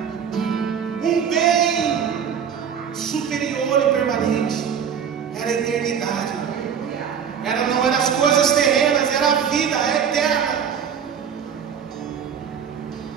Um bem superior e permanente era a eternidade. Não eram as coisas terrenas, era a vida eterna.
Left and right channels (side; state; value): left; quieter; 7.6 dB